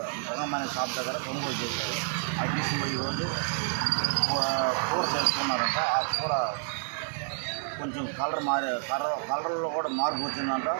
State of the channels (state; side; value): silent; left; 58 dB below the other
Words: రంగమైన షాప్ దగ్గర కొనుగోలు చేశాడు. అది తీసుకుని ఈరోజు కూర చేసుకున్నారంట. ఆ కూర కొంచెం కలర్లో కూడా మార్పు వచ్చిందంట.